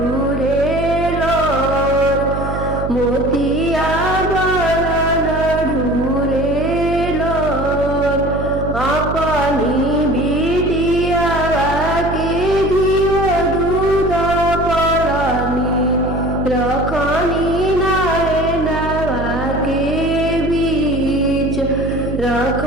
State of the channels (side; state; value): right; noise; hum, 5 dB below the sound